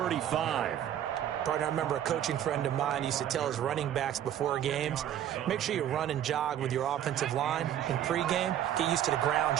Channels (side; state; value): left; quieter; 10.8 dB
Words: Partner, I remember a coaching friend of mine used to tell his running backs before games, make sure you run and jog with your offensive line in pregame. Get used to the ground